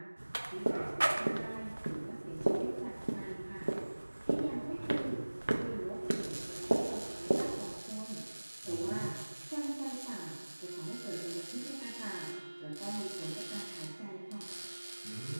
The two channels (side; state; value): both; inverted; correlation -1.00